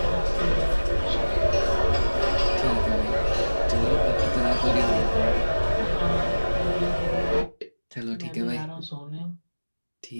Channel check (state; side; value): inverted; both; correlation -1.00